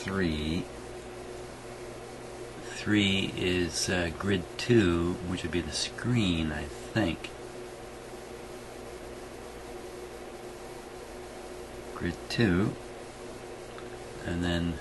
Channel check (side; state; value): both; identical; correlation 1.00